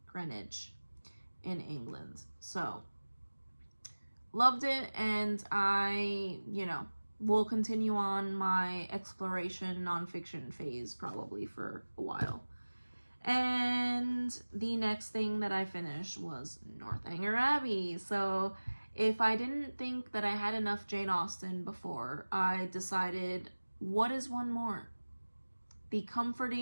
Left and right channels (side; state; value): both; inverted; correlation -1.00